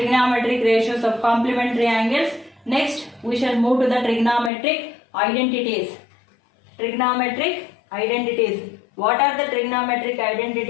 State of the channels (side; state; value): right; drops out; at 4.5 s